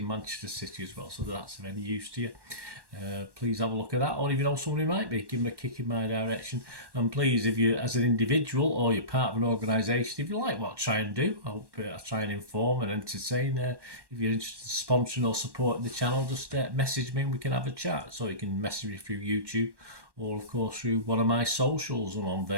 Manchester City, as well. So that's of any use to you. Please have a look at that, or if you know somebody might be, give them a kick in my direction. And please, if you, as an individual or you're part of an organisation, if you like what I try and do, I try and inform and entertain. If you're interested in sponsoring or supporting the channel, just message me and we can have a chat. So you can message me through YouTube, or of course through one of my socials. I'm on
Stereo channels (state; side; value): late; left; 1.1 ms